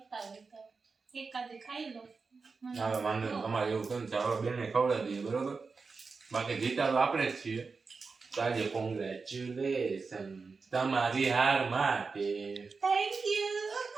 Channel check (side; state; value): left; quieter; 4.6 dB